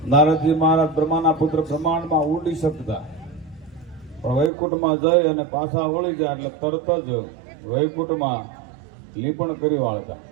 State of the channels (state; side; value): drops out; left; at 4.5 s